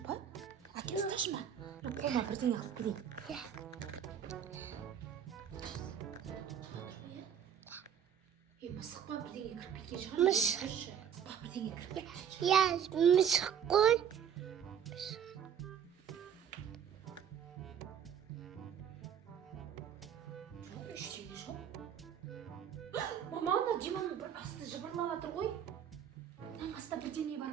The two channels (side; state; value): left; quieter; 8.4 dB